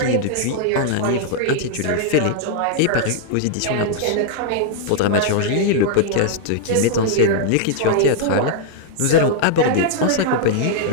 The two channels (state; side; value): different; both; correlation -0.01